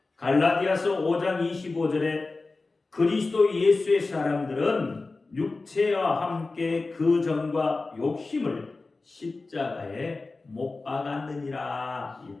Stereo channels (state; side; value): quieter; right; 3.6 dB